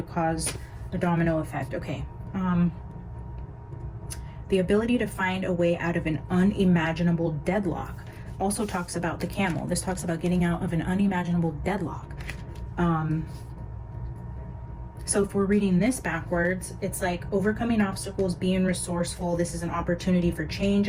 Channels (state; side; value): identical; both; correlation 1.00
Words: cause a domino effect. Okay. The ability to find a way out of an unimaginable deadlock also talks about the camel. This talks about getting out of an unimaginable deadlock. So if we're reading this backwards, it's like overcoming obstacles, being resourceful. This is an opportunity for change,